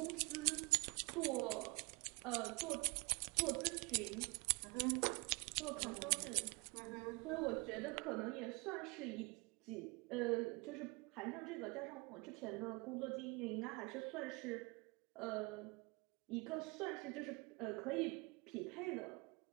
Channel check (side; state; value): left; quieter; 27.4 dB